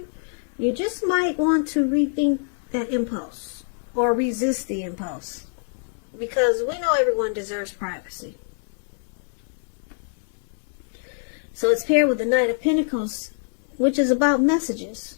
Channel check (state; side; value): silent; right; 62 dB below the other